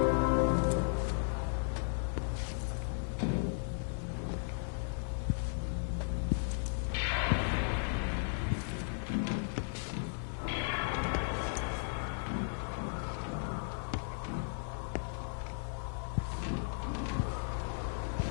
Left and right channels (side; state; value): right; silent; 54 dB below the other